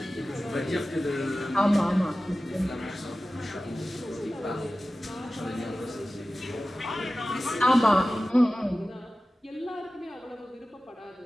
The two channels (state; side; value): normal; both; correlation 0.96